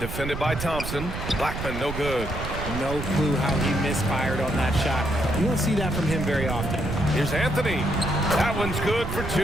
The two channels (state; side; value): noise; right; rumble, 6 dB below the sound